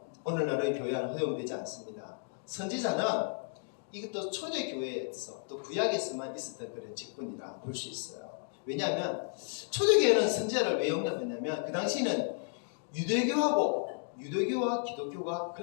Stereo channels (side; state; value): right; silent; 56 dB below the other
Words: 오늘날의 교회 안에 허용되지 않습니다. 선지자는 이것도 초대교회에서 또 구약에서만 있었던 그런 직분이라 볼 수 있어요. 왜냐하면 초대교회는 선지자를 왜 용납했냐면 그 당시에는 유대교와 기독교가